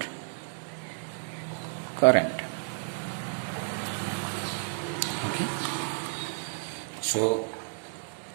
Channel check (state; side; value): silent; left; digital silence